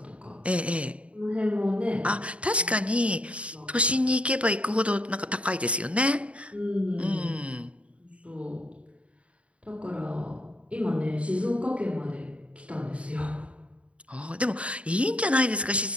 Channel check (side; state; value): left; late; 0.062 ms